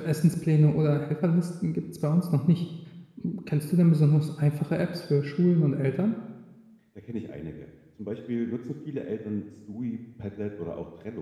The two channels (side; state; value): both; identical; correlation 1.00